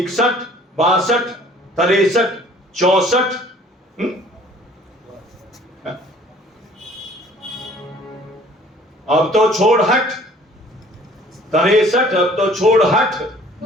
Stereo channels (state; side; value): normal; both; correlation 0.53